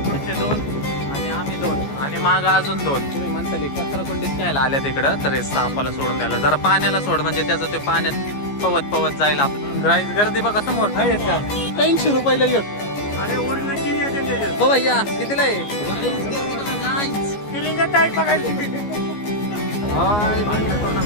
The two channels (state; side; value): late; right; 14 ms